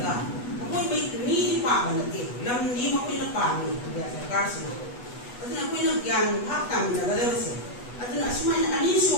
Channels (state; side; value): late; right; 8.2 ms